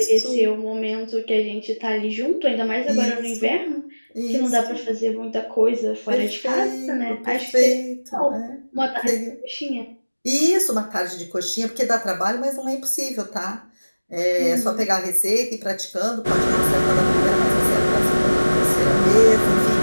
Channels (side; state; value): both; inverted; correlation -1.00